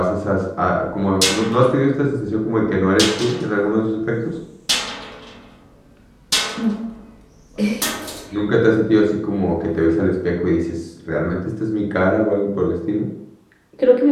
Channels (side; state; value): both; identical; correlation 1.00